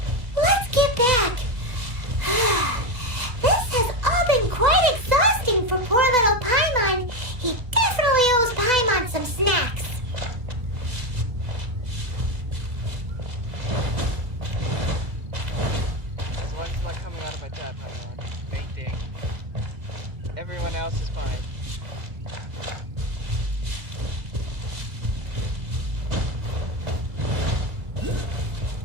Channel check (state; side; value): late; left; 2.1 ms